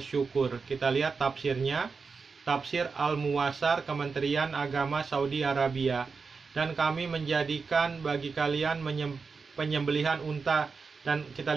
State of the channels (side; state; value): left; quieter; 4.9 dB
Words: Kita lihat tafsirnya. Tafsir Al-Muwassar Kementerian Agama Saudi Arabia. Dan kami menjadikan bagi kalian penyembelihan unta. Dan